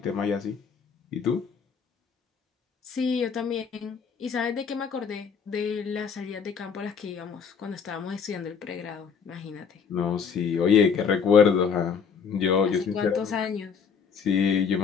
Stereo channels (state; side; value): quieter; right; 6.4 dB